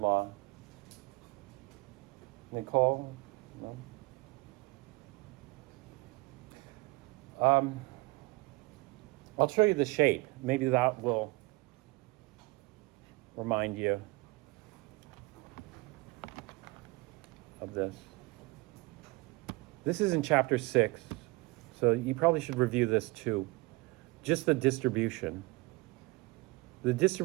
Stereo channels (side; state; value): left; quieter; 24.3 dB